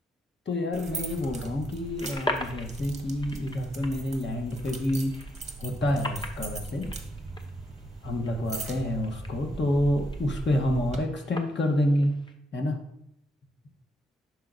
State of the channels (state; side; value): normal; both; correlation 0.79